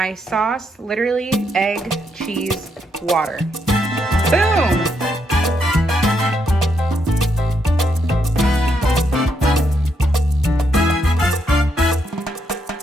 sauce, literally egg, cheese, water. Boom!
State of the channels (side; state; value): both; normal; correlation 0.78